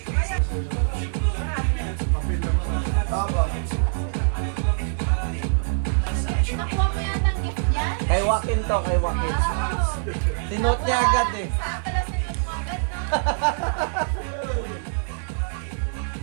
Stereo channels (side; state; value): left; silent; digital silence